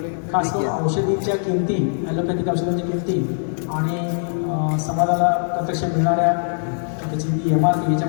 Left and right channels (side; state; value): right; silent; 65 dB below the other